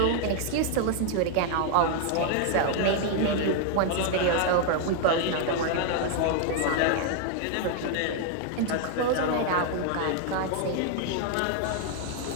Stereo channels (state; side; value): different; both; correlation 0.00